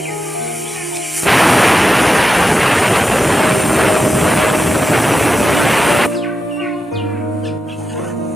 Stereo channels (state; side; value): normal; both; correlation 0.89